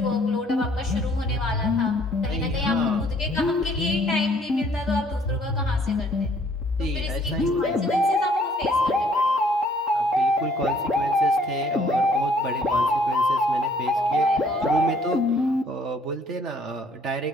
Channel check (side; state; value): both; normal; correlation 0.61